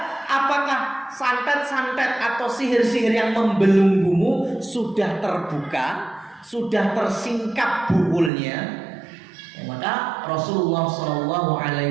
Apakah santet-santet atau sihir-sihir yang membelenggumu sudah terbuka, sudah tersingkap bukulnya? Ya, maka Rasulullah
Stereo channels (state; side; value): drops out; left; at 8.3 s